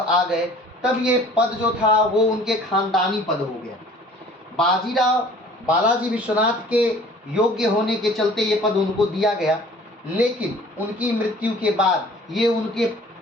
गए, तब ये पद जो था वो उनके खानदानी पद हो गया। बाजीराव बालाजी विश्वनाथ के योग्य होने के चलते ये पद उनको दिया गया, लेकिन उनकी मृत्यु के बाद ये उनके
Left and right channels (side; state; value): both; normal; correlation 0.50